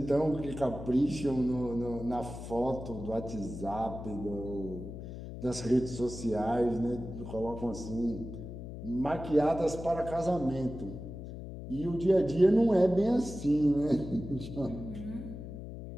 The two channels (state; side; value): noise; left; hum, 10 dB below the sound